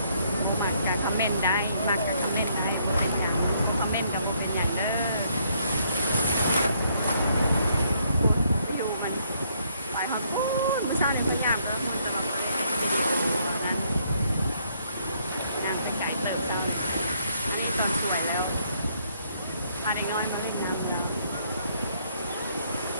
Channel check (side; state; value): both; inverted; correlation -0.69